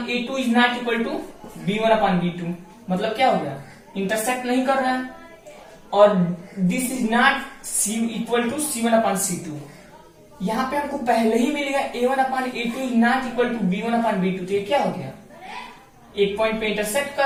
a2 is not equal to b1 upon b2, मतलब क्या हो गया, इंटरसेक्ट नहीं कर रहा है। और this is not equal to c1 upon c2। यहाँ पे हमको पहले ही मिलेगा a1 upon a2 is not equal to b1 upon b2, तो ये क्या हो गया, एक पॉइंट पे इंटरसेक्ट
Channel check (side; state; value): both; identical; correlation 1.00